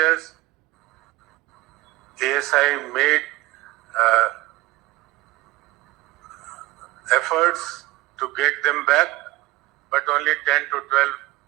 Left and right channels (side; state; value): left; quieter; 19.4 dB